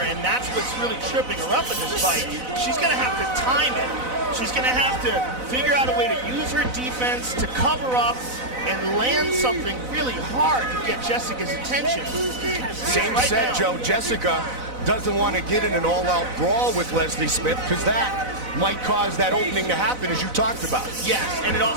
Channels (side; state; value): left; late; 4.0 ms